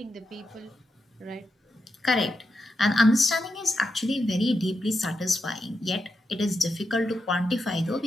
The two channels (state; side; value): normal; both; correlation 0.86